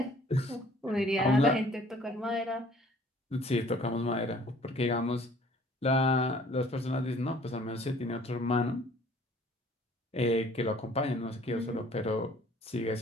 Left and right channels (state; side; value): normal; both; correlation 0.55